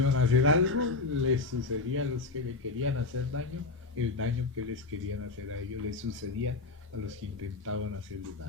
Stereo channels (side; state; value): right; quieter; 3.8 dB